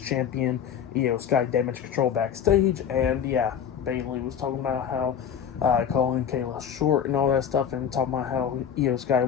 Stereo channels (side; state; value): right; quieter; 8.3 dB